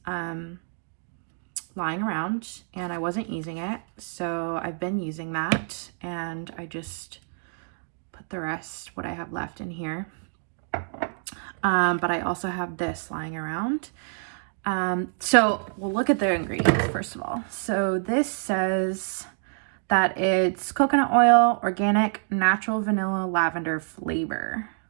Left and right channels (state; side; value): silent; left; 60 dB below the other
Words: lying around and I wasn't using it, so I've been using that, and I just put the rest, what I have left, in here. But I also have this lying around, So we'll look at the ingredients first of all. So this says that it's coconut oil, organic, natural vanilla lavender flavor,